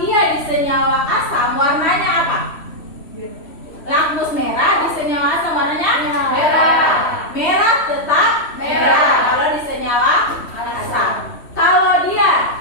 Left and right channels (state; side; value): late; right; 3.1 ms